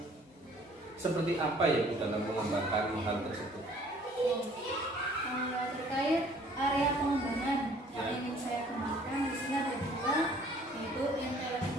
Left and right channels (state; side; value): normal; both; correlation 0.56